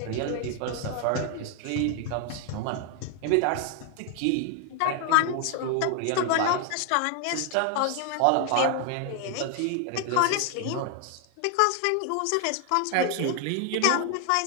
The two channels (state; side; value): different; both; correlation 0.00